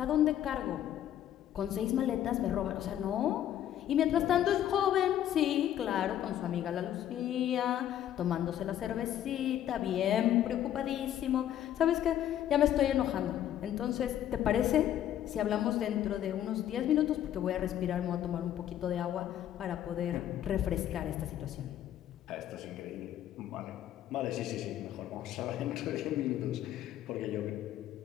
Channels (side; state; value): right; quieter; 11.3 dB